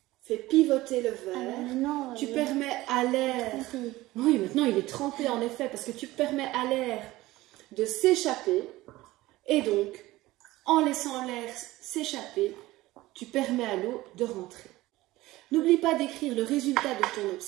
fais pivoter le verre, tu permets à l'air... Oui, maintenant il est trempé en effet, parce que tu permets à l'air de s'échapper. Et donc, en laissant l'air s'échapper, tu permets à l'eau de rentrer. N'oublie pas d'écrire le résultat de ton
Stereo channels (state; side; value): quieter; left; 18.1 dB